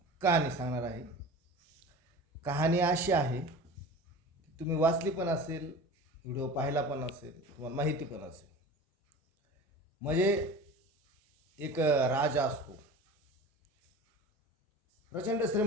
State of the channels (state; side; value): normal; both; correlation 0.36